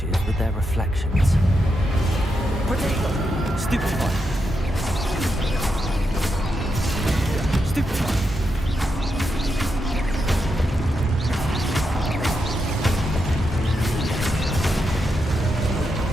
with their reflections. Protego! Stupefy! Stupefy!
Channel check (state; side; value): normal; both; correlation 0.84